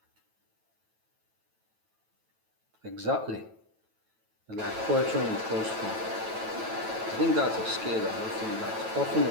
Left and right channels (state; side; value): late; left; 9.1 ms